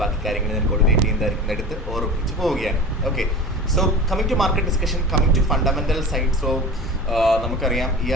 ബാക്കി കാര്യങ്ങൾ ഞാൻ കോർഡിനേറ്റ് ചെയ്യുന്നതായിരിക്കും, എടുത്ത് ഓർമ്മിച്ച് പോവുകയാണ്. Okay, so coming to market discussion, coming to fundamental side. So നമുക്കറിയാം ഈ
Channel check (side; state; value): both; normal; correlation 0.34